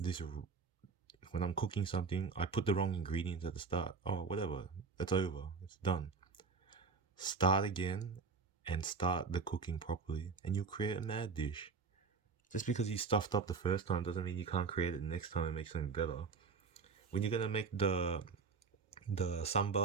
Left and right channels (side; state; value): left; quieter; 4.8 dB